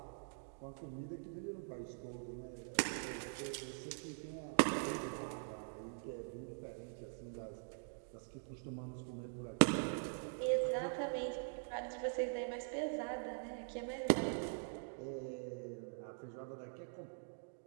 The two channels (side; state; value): left; silent; digital silence